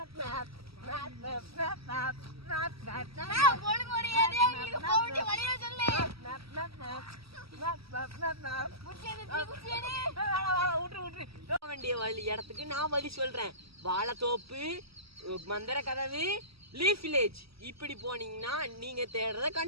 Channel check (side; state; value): left; late; 0.76 ms